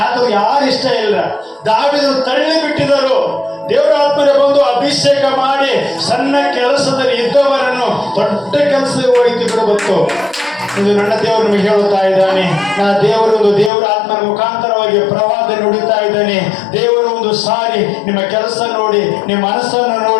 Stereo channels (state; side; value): drops out; right; at 13.7 s